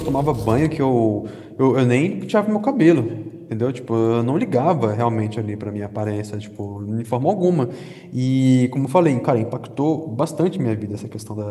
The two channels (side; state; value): both; identical; correlation 1.00